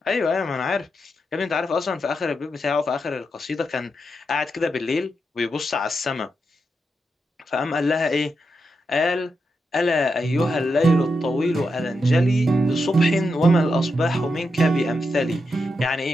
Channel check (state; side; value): normal; both; correlation 0.85